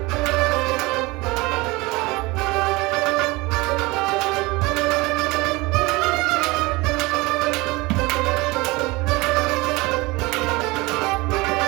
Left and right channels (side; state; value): left; quieter; 23.1 dB